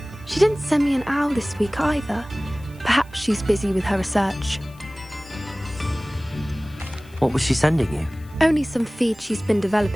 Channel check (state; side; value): noise; left; hiss, 27 dB below the sound